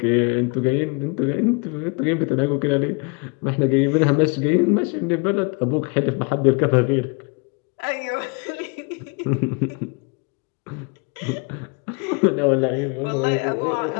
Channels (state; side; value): quieter; right; 33.3 dB